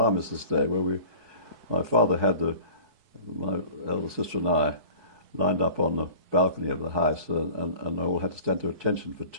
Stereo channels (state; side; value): late; left; 4.6 ms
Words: Day, where my father had my elder sister and I lined up on the balcony of the house, and all had to stand to attention for